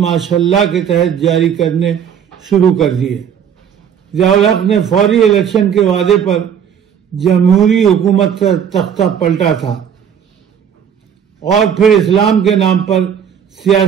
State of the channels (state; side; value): quieter; left; 8.1 dB